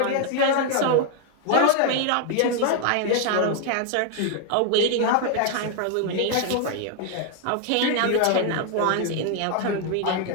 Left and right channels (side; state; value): both; different; correlation 0.00